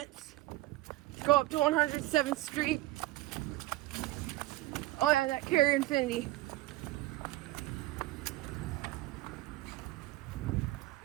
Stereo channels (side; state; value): left; quieter; 17.6 dB